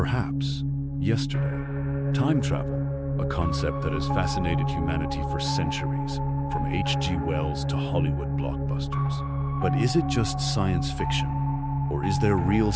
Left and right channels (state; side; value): identical; both; correlation 1.00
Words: yesterday. Time travel, a concept that has fascinated humanity for centuries, from H.G. Wells to Hollywood blockbusters. But is it just science fiction, or is there real